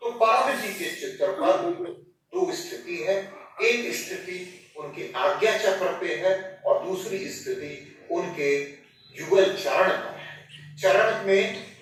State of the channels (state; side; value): identical; both; correlation 1.00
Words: तो परम जी के चित्र पर 2 स्थिति है। एक स्थिति उनके आज्ञा चक्र पे है और दूसरी स्थिति उनके युगल चरण पर है। चरण में